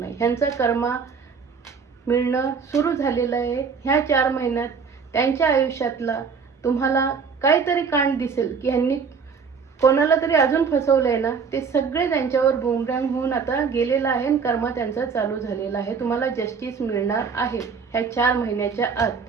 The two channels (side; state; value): left; quieter; 5.7 dB